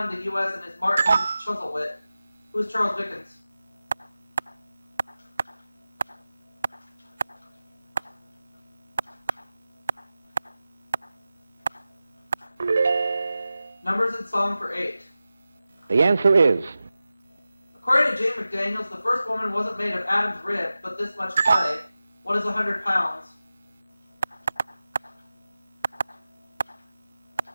the U.S. and his Martin Chuzzlewit. Who is Charles Dickens? Numbers in song for 8. The answer is. According to Jane McDaniels, the first woman wasn't made of Adam's rib, but this much clay. What is 100 pounds?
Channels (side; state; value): both; inverted; correlation -0.95